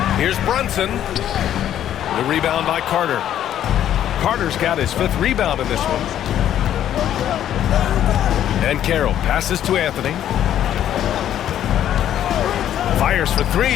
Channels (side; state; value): right; quieter; 11.0 dB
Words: Here's Brunson. The rebound by Carter. Carter's got his 5th rebound in this one. And Carroll passes to Anthony. Fires for 3.